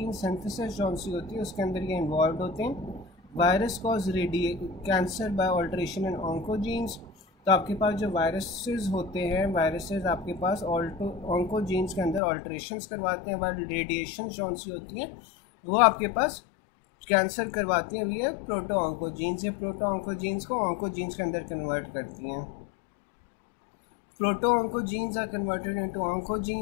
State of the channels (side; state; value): right; drops out; at 12.2 s